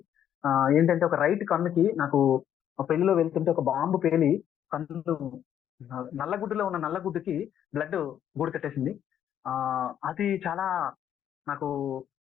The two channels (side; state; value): right; quieter; 10.0 dB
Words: ఏంటంటే ఒక రైట్ కన్నుకి నాకు పెళ్లిలో వెళ్తుంటే ఒక బాంబు పేలి కన్ను నల్లగుడ్డులో ఉన్న నల్లగుడ్డుకి బ్లడ్ గూడు కట్టేసింది. అది చాలా నాకు